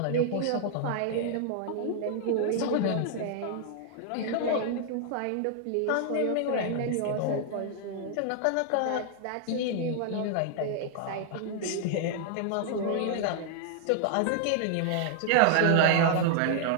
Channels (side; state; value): both; different; correlation 0.00